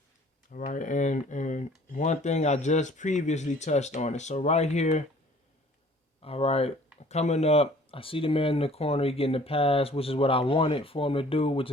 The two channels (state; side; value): normal; both; correlation 0.53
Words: All right, and one thing I just previously touched on it. So right here, all right, coming up, I see the man in the corner, he getting the pass, which is what I wanted for him to do, which